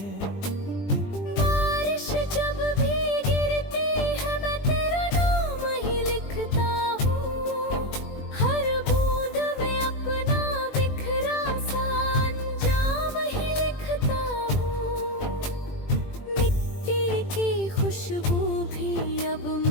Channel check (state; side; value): late; right; 20 ms